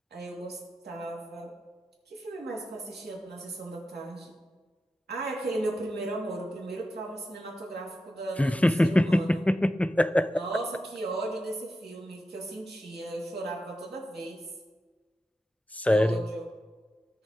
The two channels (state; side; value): normal; both; correlation 0.90